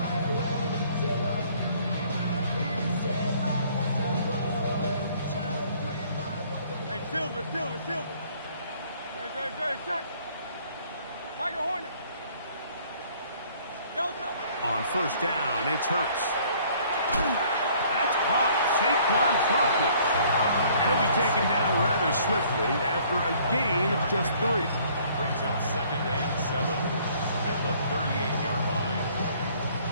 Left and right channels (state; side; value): inverted; both; correlation -0.59